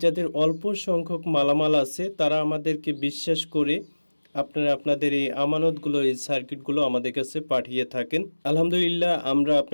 যাদের অল্প সংখ্যক মালামাল আছে তারা আমাদেরকে বিশ্বাস করে আপনারা আপনাদের এই আমানতগুলো, এই সার্কিটগুলো আমাদের কাছে পাঠিয়ে থাকেন। আলহামদুলিল্লাহ, আমরা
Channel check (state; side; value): inverted; both; correlation -1.00